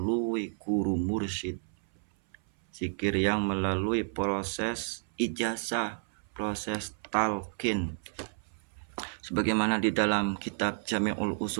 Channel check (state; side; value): silent; left; 57 dB below the other